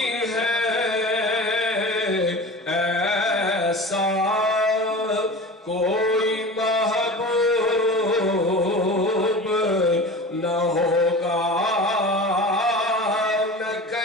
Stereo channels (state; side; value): normal; both; correlation 0.34